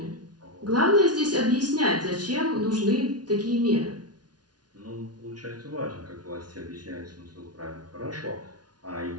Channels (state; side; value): late; left; 0.69 ms